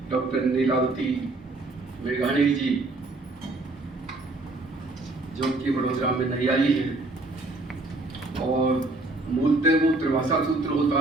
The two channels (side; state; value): left; quieter; 3.0 dB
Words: डॉक्टर नीलावती मेघानी जी जो कि वडोदरा में नई आई है, और मूलतः वो त्रिभाषा सूत्र होता